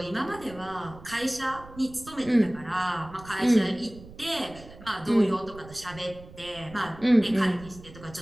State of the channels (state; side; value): noise; right; rumble, 18 dB below the sound